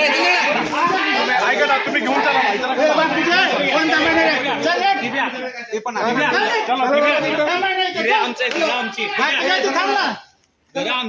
ऐका ना तुम्ही घेऊन चला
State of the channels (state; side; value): identical; both; correlation 1.00